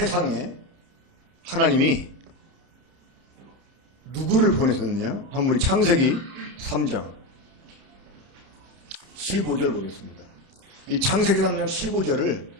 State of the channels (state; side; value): late; left; 30 ms